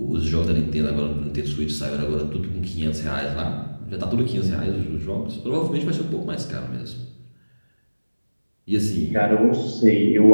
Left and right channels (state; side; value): inverted; both; correlation -1.00